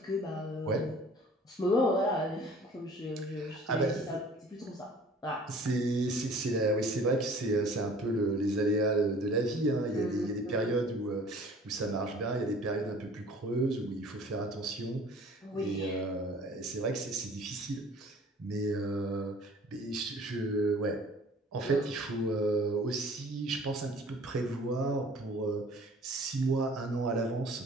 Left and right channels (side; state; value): both; normal; correlation 0.49